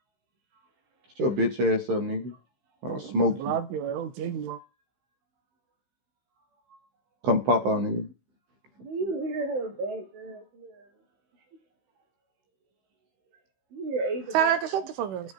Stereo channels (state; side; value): late; left; 15 ms